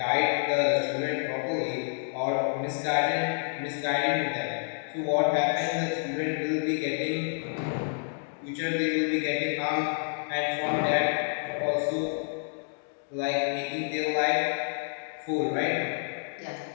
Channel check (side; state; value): right; silent; 59 dB below the other